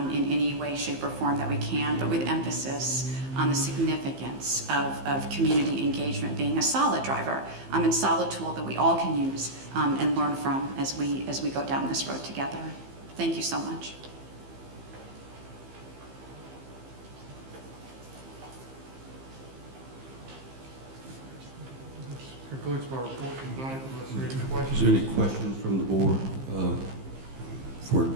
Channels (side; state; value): left; late; 15 ms